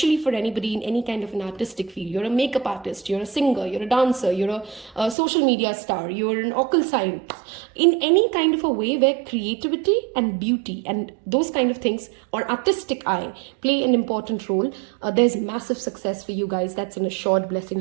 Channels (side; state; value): left; drops out; at 5.2 s